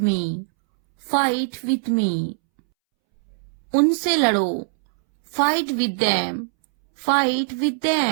me, fight with me. उनसे लड़ो, fight with them, fight with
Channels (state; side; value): silent; left; 65 dB below the other